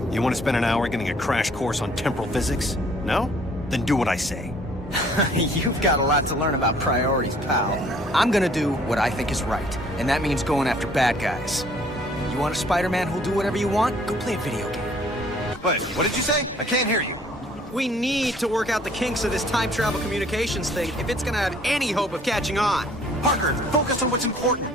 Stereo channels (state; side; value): normal; both; correlation 0.58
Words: You want to spend an hour getting a crash course on temporal physics? No? Then do what I say. You've got a lot to learn about priorities, pal. I'm gonna do what I think is right, and that means going after bad guys. You want a Spider-Man who'll do whatever you want? Go play a video game. Wait, what did you say? I can't hear you. We need to work out the kinks of this time travel communications thing if it's gonna have any hope of catching on. Parker, focus on what's